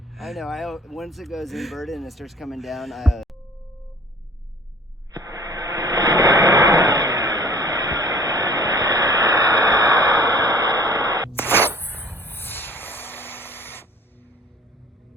I know. Once it goes inverted and it starts coming down,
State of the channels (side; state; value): both; normal; correlation 0.50